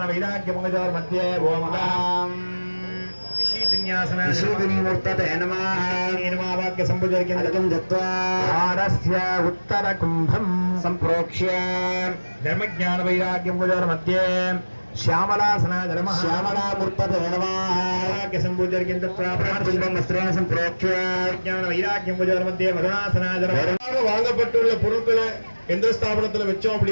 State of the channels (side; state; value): both; inverted; correlation -1.00